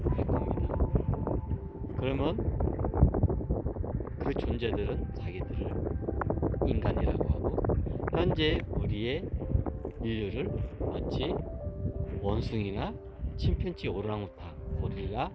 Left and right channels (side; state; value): both; identical; correlation 1.00